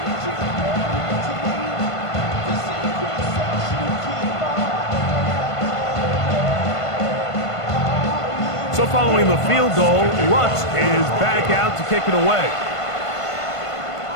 So following the field goal, Lutz is back out to kick it away.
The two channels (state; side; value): late; right; 1.5 ms